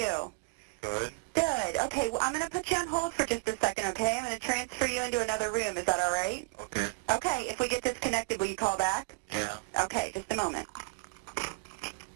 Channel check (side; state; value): left; silent; digital silence